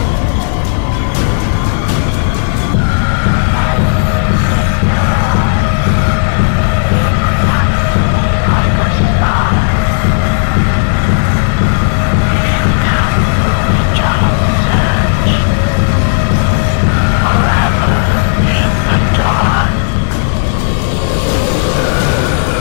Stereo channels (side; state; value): right; silent; digital silence